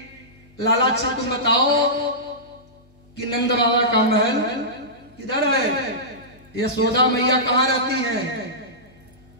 लाला अच्छा तुम बताओ कि नंद बाबा का महल किधर है, यशोदा मैया कहाँ रहती है?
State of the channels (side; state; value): both; normal; correlation -0.17